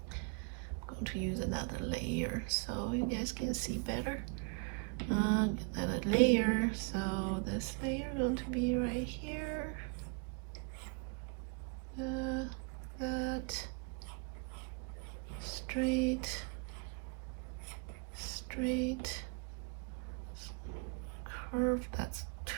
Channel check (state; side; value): quieter; left; 33.6 dB